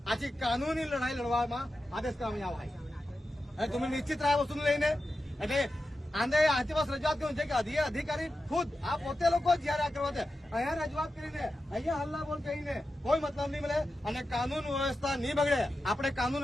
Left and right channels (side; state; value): both; normal; correlation 0.91